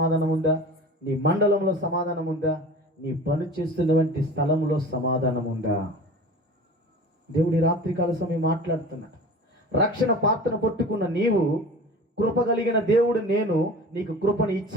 ఉందా? నీ మండలంలో సమాధానం ఉందా? నీ పని చేస్తున్నటువంటి స్థలంలో సమాధానం ఉందా? దేవుడి రాత్రికాల సమయం మాట్లాడుతున్నాడు. రక్షణ పాత్రను పట్టుకున్న నీవు, కృప కలిగిన దేవుడు నేను నీకు కృపను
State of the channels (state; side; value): normal; both; correlation 0.39